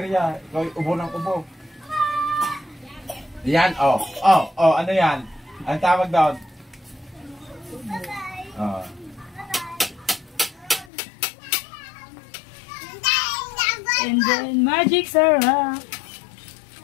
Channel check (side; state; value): right; drops out; at 10.9 s